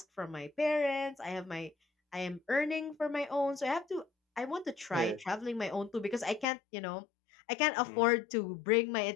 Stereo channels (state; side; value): drops out; right; at 6.5 s